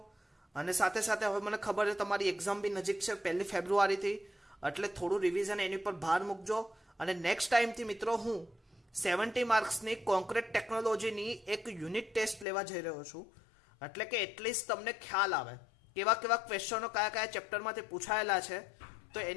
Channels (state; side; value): drops out; right; at 12.5 s